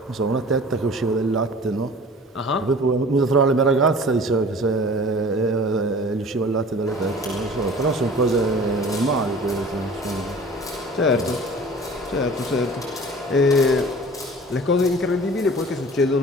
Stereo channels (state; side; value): normal; both; correlation 0.44